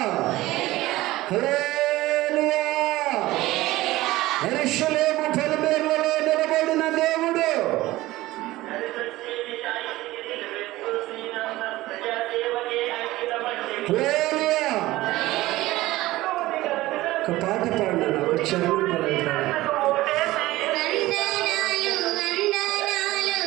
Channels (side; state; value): left; quieter; 17.6 dB